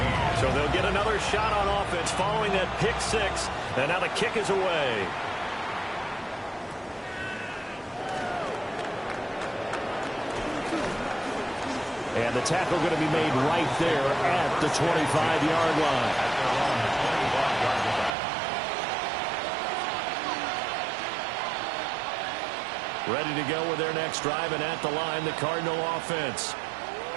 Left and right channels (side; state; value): left; drops out; at 18.1 s